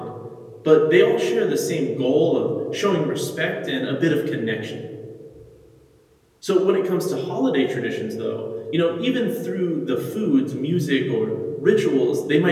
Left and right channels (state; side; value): identical; both; correlation 1.00